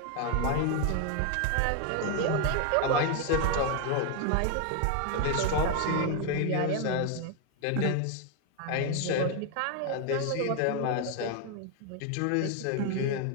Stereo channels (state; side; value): different; both; correlation 0.01